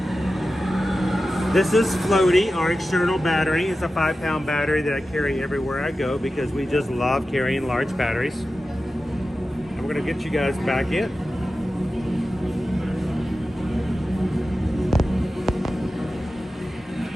This is Floaty, our external battery. It's a 5-pound battery that I carry everywhere I go because we just love carrying large batteries. And we're gonna get you guys back in.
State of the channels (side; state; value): both; normal; correlation 0.93